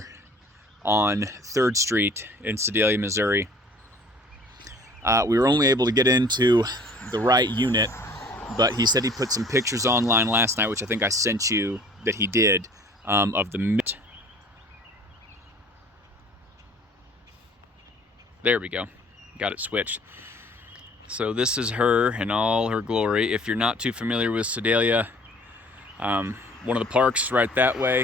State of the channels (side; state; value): both; normal; correlation 0.52